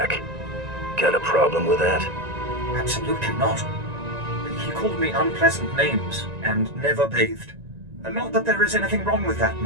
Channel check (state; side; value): late; left; 1.9 ms